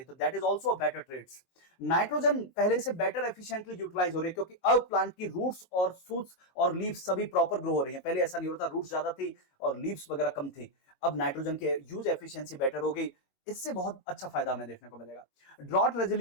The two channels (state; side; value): late; right; 22 ms